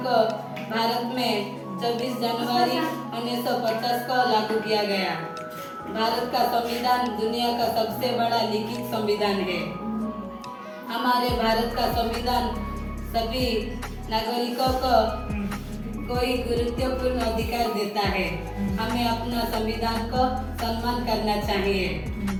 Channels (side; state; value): both; identical; correlation 1.00